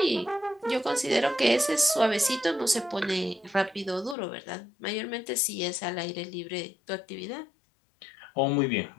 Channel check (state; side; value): drops out; right; at 4.2 s